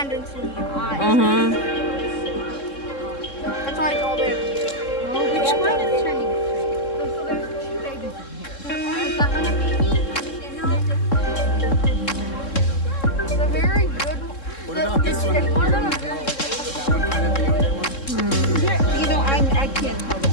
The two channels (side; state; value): right; late; 3.7 ms